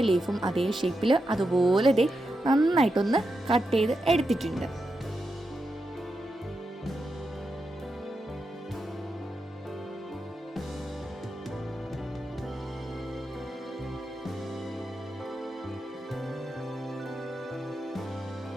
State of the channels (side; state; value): both; normal; correlation 0.87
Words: ലീഫും അതേ ഷേപ്പിൽ അതുപോലെ നന്നായിട്ടൊന്ന് കട്ട് ചെയ്ത് എടുത്തിട്ടുണ്ട്.